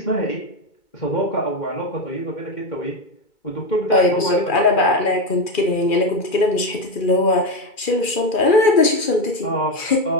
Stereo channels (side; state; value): right; late; 2.4 ms